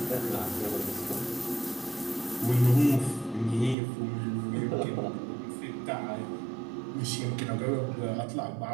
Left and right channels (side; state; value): left; drops out; at 3.8 s